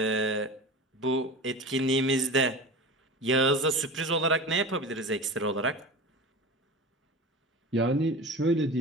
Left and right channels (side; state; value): both; normal; correlation 0.32